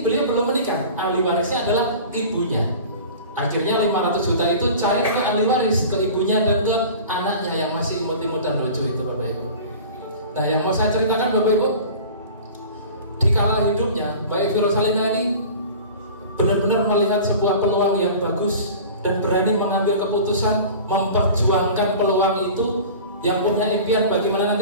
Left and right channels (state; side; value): inverted; both; correlation -0.39